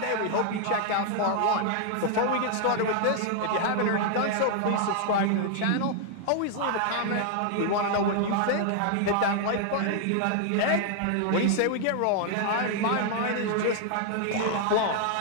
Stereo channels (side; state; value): both; different; correlation 0.00